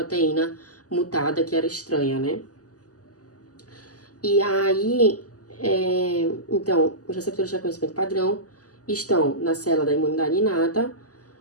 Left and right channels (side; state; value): right; late; 0.67 ms